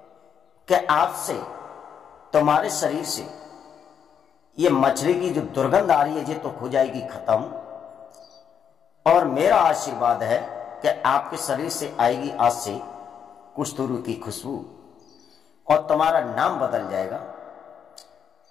कि आज से तुम्हारे शरीर से ये मछली की जो दुर्गंध आ रही है ये तो हो जाएगी खत्म, और मेरा आशीर्वाद है कि आपके शरीर से आएगी आज से कुस्तुरु की खुशबू, और तुम्हारा नाम बदल जाएगा।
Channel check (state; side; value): quieter; right; 7.8 dB